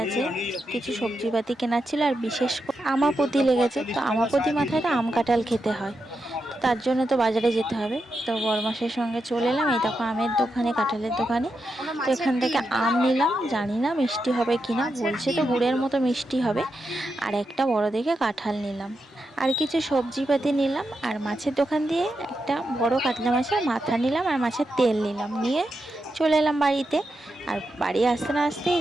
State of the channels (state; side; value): normal; both; correlation 0.86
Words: আছে, কিছু সবজিপাতি কেনার ছিল, আর বিশেষ করে আমাপতি লেগেছে। তো আমাপতি মাথায় তো আম কাঁঠাল খেতে হয়, তো তার জন্য তো বাজারে যেতে হবে। তো বরমাসের সঙ্গে চলে এলাম। এই দেখো আমের দোকানে, কাঁঠালের দোকানে। তো এখান থেকে আম নিলাম, জানি না মিষ্টি হবে কিনা, বলছে তো গুড়ের মতো মিষ্টি হবে। আর একটা বড় দেখে কাঁঠাল নিলাম, আর কিছু সবজিপাতি নিলাম। আর মাছের দোকান দিয়ে একটা বড় কাতলা মাছের মাথা নিলাম, আর মাছের তেল নিলাম, নিয়ে চলে এলাম বাড়িতে। আর বাড়ি আসতে না আসতেই